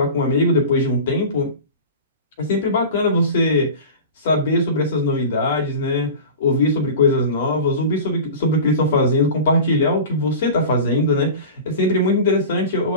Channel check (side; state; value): both; inverted; correlation -0.33